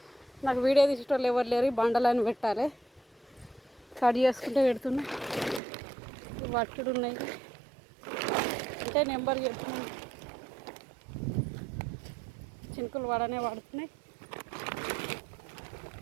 నాకు వీడియో తీసేటోళ్ళు ఎవరు లేరు. బండలని పెట్టాలి, కట్ చేసుకుంటే పెడుతున్నా. వట్టుడు ఉన్నాయి అంటే నెంబర్ చెప్తున్నాను. చినుకులు పడనే పడుతున్నాయి.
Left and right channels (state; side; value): drops out; left; at 5.6 s